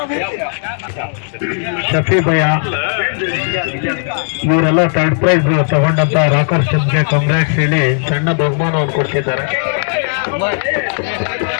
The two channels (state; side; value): silent; right; 61 dB below the other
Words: ಶಫಿ ಭಯ್ಯ ಇವರೆಲ್ಲ ಥರ್ಡ್ ಪ್ರೈಸ್ ತಗೊಂಡಂತ ರಾಕರ್ ಚಂದ್ಗೆ ಕಂಗ್ರಾಟ್ಸ್ ಹೇಳಿ ಸಣ್ಣ ಬಹುಮಾನವನ್ನು ಕೊಡ್ತಿದ್ದಾರೆ.